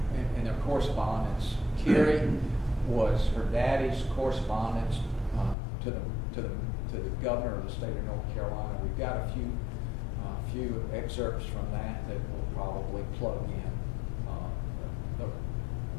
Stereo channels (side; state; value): right; drops out; at 5.6 s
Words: in their correspondence. Carrie was her daddy's correspondence to the governor of the state of North Carolina. We've got a few excerpts from that we'll probably plug in.